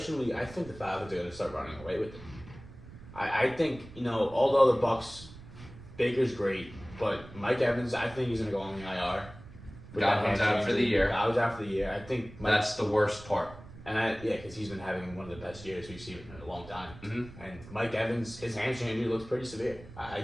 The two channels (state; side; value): noise; right; rumble, 17 dB below the sound